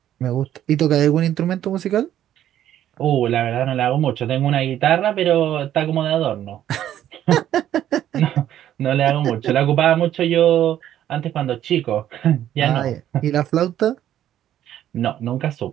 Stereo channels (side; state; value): left; quieter; 11.5 dB